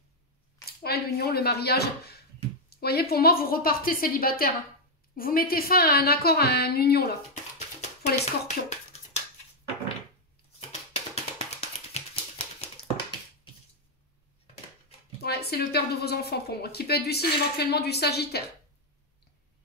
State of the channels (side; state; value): both; normal; correlation 0.00